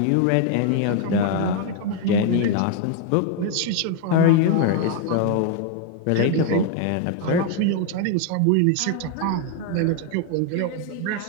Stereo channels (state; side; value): different; both; correlation 0.01